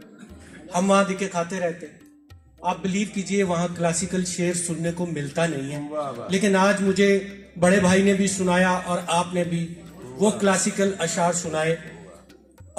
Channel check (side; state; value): both; identical; correlation 1.00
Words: हम वहाँ दिखे खाते रहते हैं। आप बिलीव कीजिए वहाँ क्लासिकल शेर सुनने को मिलता नहीं है। लेकिन आज मुझे बड़े भाई ने भी सुनाया और आपने भी वो क्लासिकल अशार सुनाए,